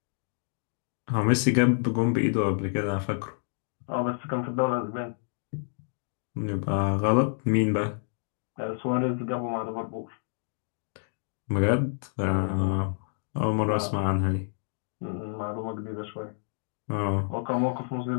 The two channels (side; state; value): right; silent; digital silence